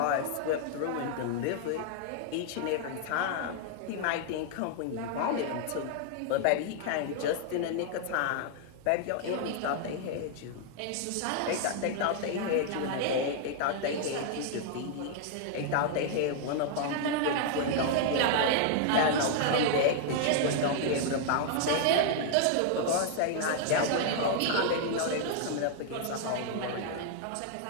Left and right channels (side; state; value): both; different; correlation 0.00